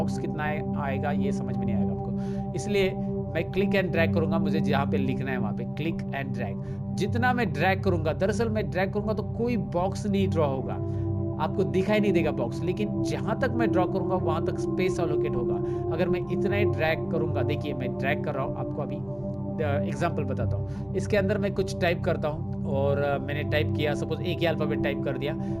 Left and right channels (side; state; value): right; noise; hum, 24 dB below the sound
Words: कितना आएगा ये समझ में नहीं आएगा आपको। इसलिए मैं क्लिक एंड ड्रैग करूंगा, मुझे जहां पे लिखना है वहां पे क्लिक एंड ड्रैग। जितना मैं ड्रैग करूंगा, दरअसल मैं ड्रैग करूंगा तो कोई बॉक्स नहीं ड्रॉ होगा, आपको दिखाई नहीं देगा बॉक्स, लेकिन जहां तक मैं ड्रॉ करूंगा वहां तक स्पेस अलोकेट होगा। अगर मैं इतना ही ड्रैग करूंगा, देखिए मैं ड्रैग कर रहा हूं, आपको अभी एग्जाम्पल बताता हूँ। इसके अंदर मैं कुछ टाइप करता हूँ और मैंने टाइप किया, सपोज एक ही अल्फाबेट टाइप कर दिया,